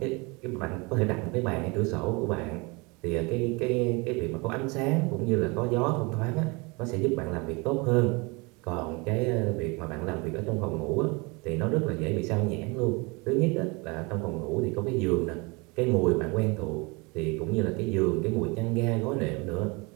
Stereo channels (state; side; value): quieter; left; 27.8 dB